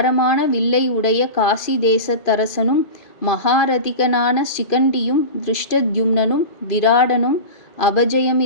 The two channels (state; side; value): late; right; 2.5 ms